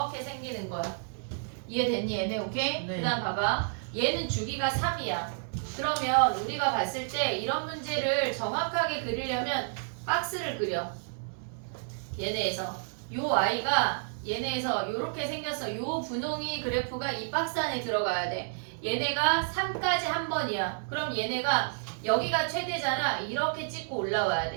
생기는 거야. 이해됐니 얘네? 오케이? 네. 그 다음 봐봐. 얘는 주기가 3이야. 그러면 우리가 봤을 때 이런 문제를 정확하게 그리려면 박스를 그려. 얘네에서. 요 아이가 얘네에서 요렇게 생겼어. 요 분홍이 그래프가 이 박스 안에 들어가야 돼. 얘네가 3까지 한 번이야. 그럼 얘네가 여기가 최대잖아. 이렇게 찍고 올라와야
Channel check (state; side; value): silent; left; 58 dB below the other